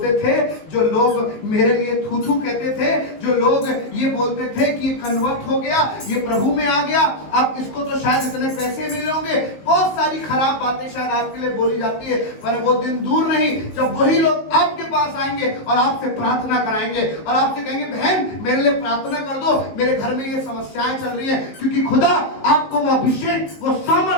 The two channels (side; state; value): right; late; 19 ms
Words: थे, जो लोग मेरे लिए थू थू कहते थे, जो लोग ये बोलते थे कि ये कन्वर्ट हो गया, ये प्रभु में आ गया, अब इसको तो शायद इतने पैसे मिले होंगे, बहुत सारी खराब बातें शायद आपके लिए बोली जाती है। पर वो दिन दूर नहीं जब वही लोग आपके पास आएंगे और आपसे प्रार्थना कराएंगे और आपसे कहेंगे बहन मेरे लिए प्रार्थना कर दो, मेरे घर में ये समस्याएं चल रही है। क्योंकि खुदा आपको वो अभिषेक, वो